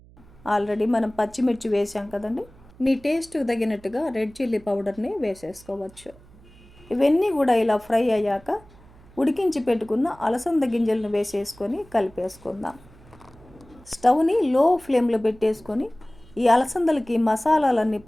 ఆల్రెడీ మనం పచ్చిమిర్చి వేసాం కదండి, మీ టేస్ట్కి తగినట్టుగా రెడ్ చిల్లీ పౌడర్ని వేసేసుకోవచ్చు. ఇవన్నీ కూడా ఇలా ఫ్రై అయ్యాక ఉడికించి పెట్టుకున్న అలసంద గింజలను వేసేసుకొని కలిపేసుకుందాం. స్టవ్ని లో ఫ్లేమ్లో పెట్టేసుకొని ఈ అలసందలకి మసాలాలన్నీ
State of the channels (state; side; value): noise; right; hum, 24 dB below the sound